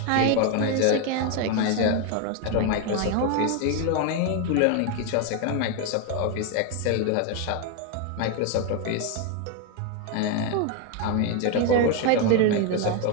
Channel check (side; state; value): both; different; correlation 0.01